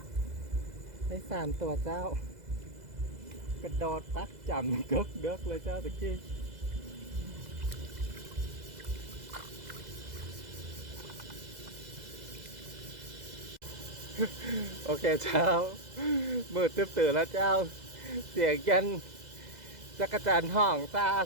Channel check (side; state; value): left; late; 2.0 ms